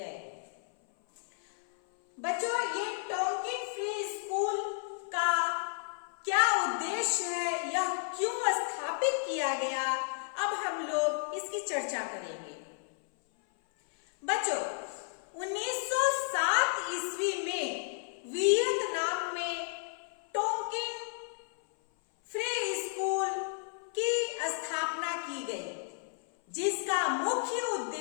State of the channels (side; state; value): right; silent; 56 dB below the other